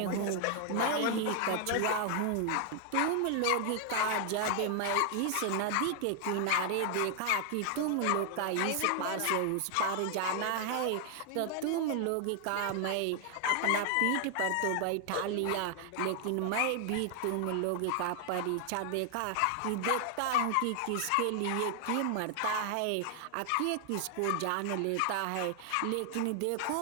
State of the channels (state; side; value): different; both; correlation 0.00